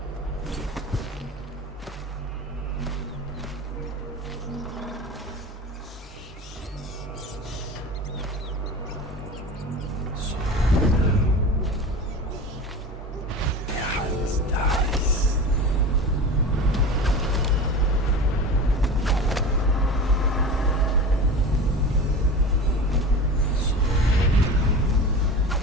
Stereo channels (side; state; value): both; normal; correlation 0.32